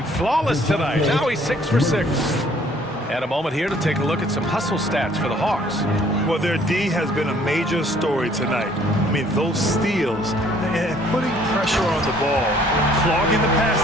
flawless tonight. Now he's 6 for 6. And a moment here to take a look at some hustle stats for the Hawks. Well, their D has been a major story tonight. I mean, those steals and putting pressure on the ball, clogging the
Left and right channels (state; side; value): normal; both; correlation 0.59